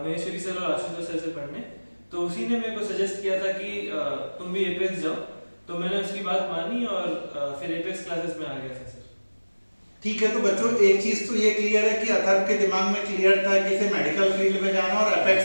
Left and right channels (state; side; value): inverted; both; correlation -1.00